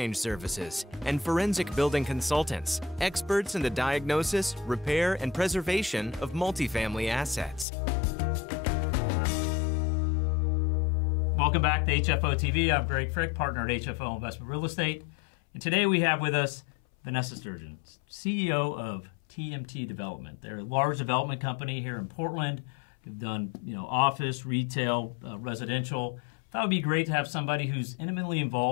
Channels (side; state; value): right; drops out; at 7.7 s